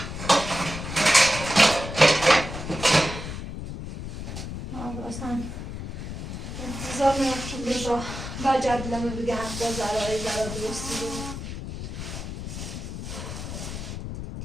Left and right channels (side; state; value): left; noise; rumble, 7 dB below the sound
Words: اصلا انتظار میرفتم رضا و جدلمه بگه حتی زرای زرا درستی رو